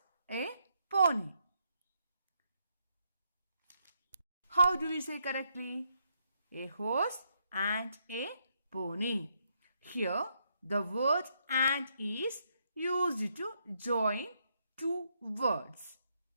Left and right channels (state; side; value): inverted; both; correlation -0.77